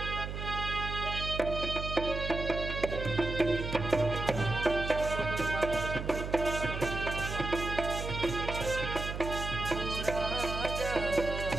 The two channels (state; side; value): noise; right; hum, 5 dB below the sound